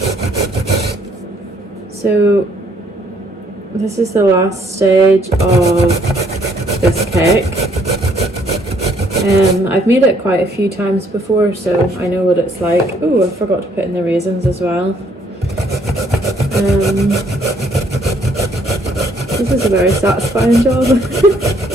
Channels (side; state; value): both; normal; correlation 0.65